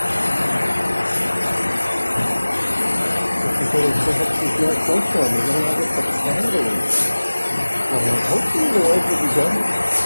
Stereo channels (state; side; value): inverted; both; correlation -1.00